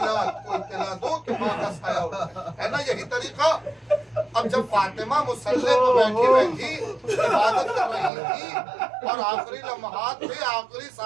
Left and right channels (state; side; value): drops out; left; at 8.1 s